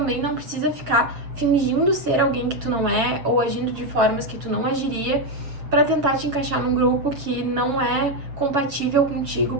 não precisa ficar fingindo ser alguém que tu não é ou agindo de formas que tu não agiria para tentar te encaixar num grupo que não é compatível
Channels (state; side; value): late; left; 7.3 ms